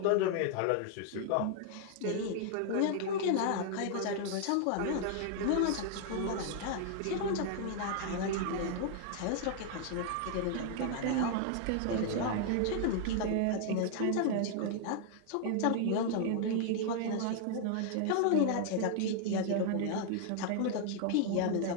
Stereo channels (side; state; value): both; different; correlation 0.00